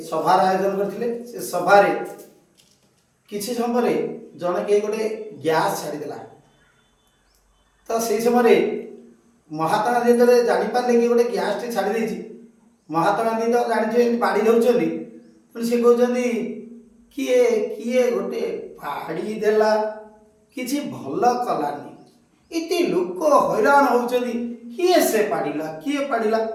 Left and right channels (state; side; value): identical; both; correlation 1.00